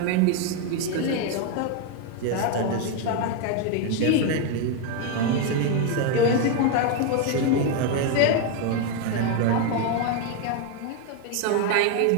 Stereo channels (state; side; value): different; both; correlation 0.01